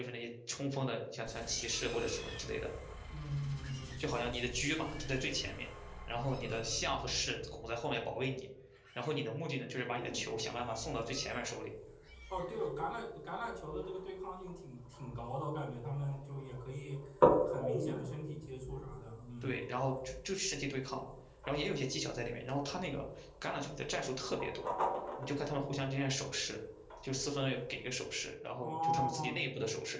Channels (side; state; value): both; identical; correlation 1.00